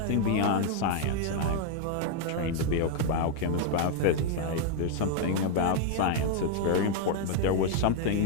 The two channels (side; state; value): both; different; correlation 0.00